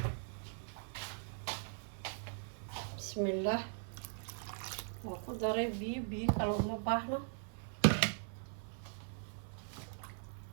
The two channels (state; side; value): silent; left; 51 dB below the other